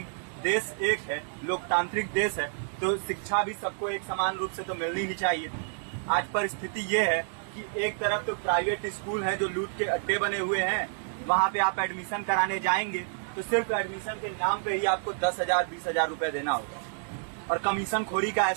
देश एक है, लोकतांत्रिक देश है, तो शिक्षा भी सबको एक समान रूप से तो मिलनी ही चाहिए। आज परिस्थिति ये है कि एक तरफ तो प्राइवेट स्कूल हैं जो लूट के अड्डे बने हुए हैं, वहां पे आप एडमिशन कराने जाएंगे तो सिर्फ एडमिशन के नाम पे ही आपको 10,000 20,000 रुपए देना होगा। और कमीशन खोरी का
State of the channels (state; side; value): silent; left; digital silence